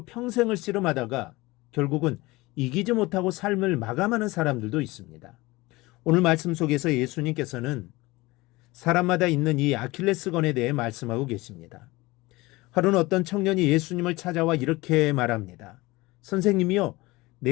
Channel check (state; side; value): quieter; right; 21.3 dB